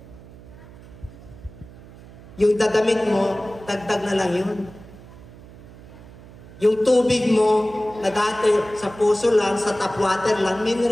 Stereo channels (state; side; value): noise; right; hum, 19 dB below the sound